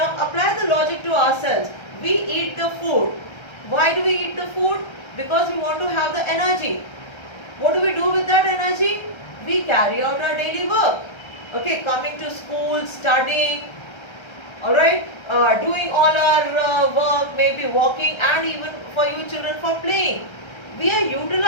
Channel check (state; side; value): late; right; 1.3 ms